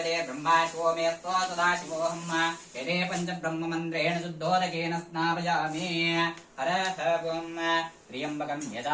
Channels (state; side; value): identical; both; correlation 1.00